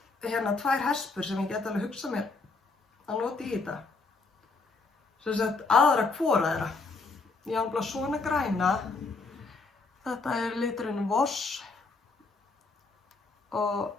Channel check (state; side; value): quieter; right; 3.9 dB